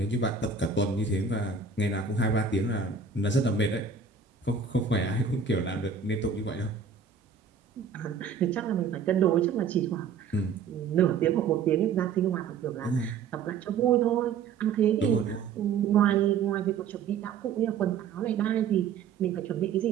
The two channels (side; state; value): left; quieter; 6.0 dB